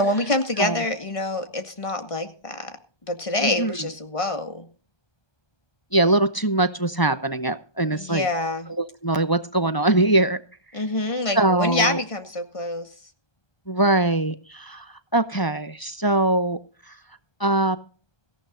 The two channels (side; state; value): right; late; 1.0 ms